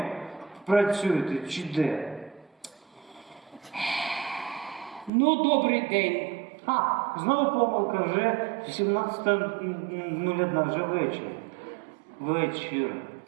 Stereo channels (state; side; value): drops out; left; at 5.1 s